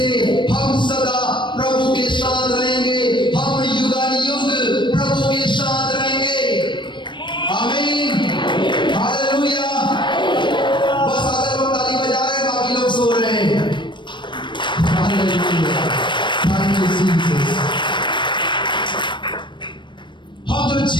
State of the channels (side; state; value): right; late; 0.23 ms